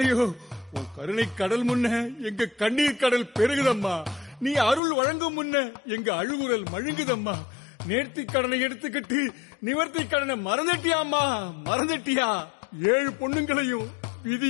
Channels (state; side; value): drops out; right; at 4.8 s